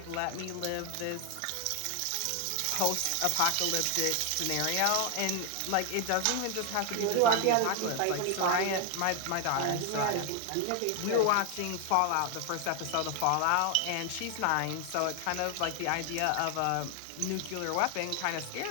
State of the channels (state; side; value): different; both; correlation 0.01